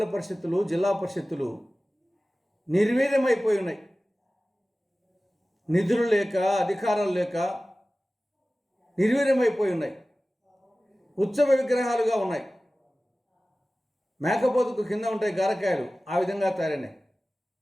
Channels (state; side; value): normal; both; correlation 0.97